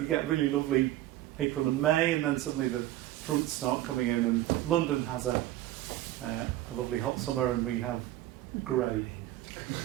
get really lovely April and May, and then suddenly the fronts start coming in, and London has a lovely hot summer, and we have grey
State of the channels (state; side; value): quieter; left; 14.8 dB